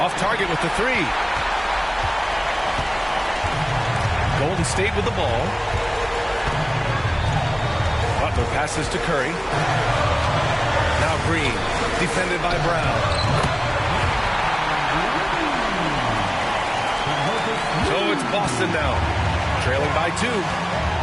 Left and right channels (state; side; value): identical; both; correlation 1.00